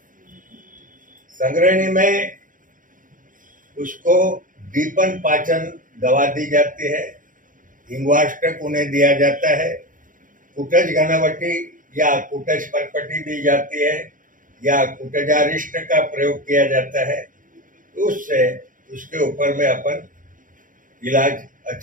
संग्रहणी में उसको दीपन पाचन दवा दी जाती है, हिंगवाष्टक उन्हें दिया जाता है, कुटज घनवटी या कुटज परपटी दी जाती है या कुटजारिष्ट का प्रयोग किया जाता है। उससे उसके ऊपर में अपन इलाज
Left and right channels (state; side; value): late; left; 0.39 ms